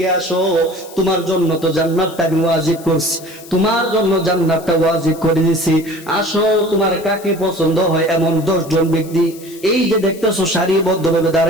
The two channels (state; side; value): noise; left; hiss, 19 dB below the sound